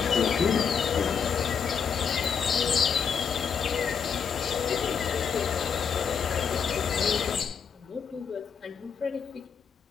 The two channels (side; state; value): right; quieter; 6.7 dB